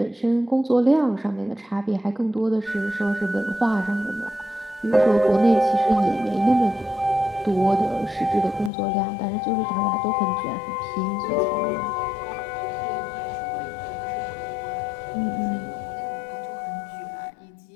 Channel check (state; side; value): drops out; right; at 8.7 s